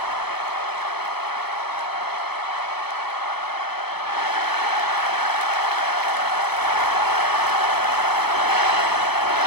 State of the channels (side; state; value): right; late; 0.97 ms